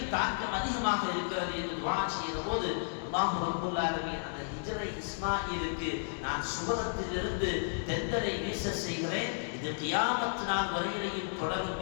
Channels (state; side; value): silent; right; digital silence